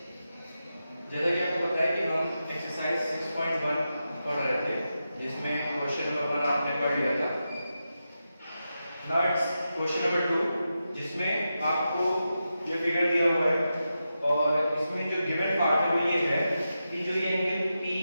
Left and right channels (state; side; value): inverted; both; correlation -0.89